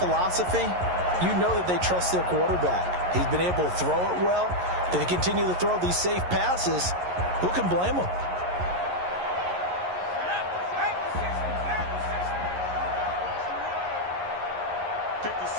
you know that they trust their quarterback. He's been able to throw it well. If they continue to throw these safe passes, who can blame them?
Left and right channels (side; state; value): left; late; 11 ms